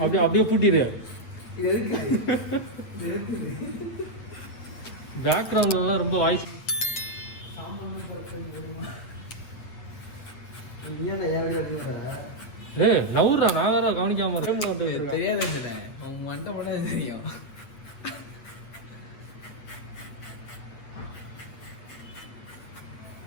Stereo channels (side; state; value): right; late; 8.4 ms